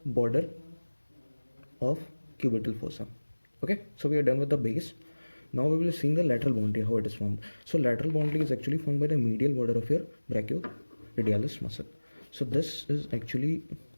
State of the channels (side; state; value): both; inverted; correlation -1.00